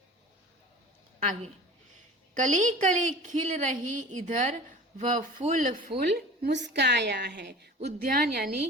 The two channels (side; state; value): both; normal; correlation 0.39